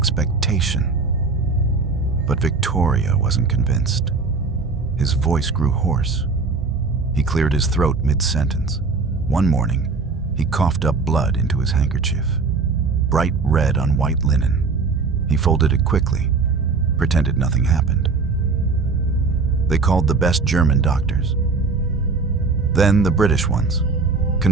But Victoria wasn't convinced. His voice grew hoarse. He cleared his throat mid-sentence. One morning, he coughed up blood into his handkerchief, bright red on white linen. He folded it quickly, pretended nothing happened. They called the best German doctors. Then the British ones.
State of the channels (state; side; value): quieter; left; 4.3 dB